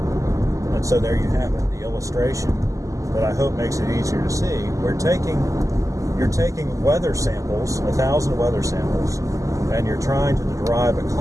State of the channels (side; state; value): left; late; 0.16 ms